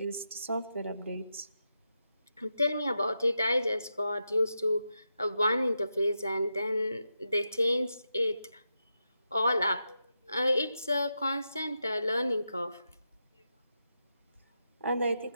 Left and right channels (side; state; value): both; inverted; correlation -0.87